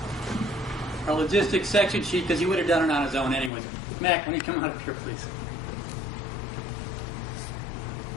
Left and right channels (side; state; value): right; drops out; at 3.5 s